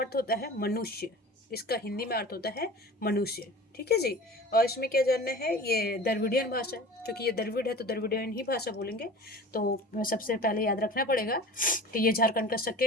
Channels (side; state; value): both; normal; correlation 0.39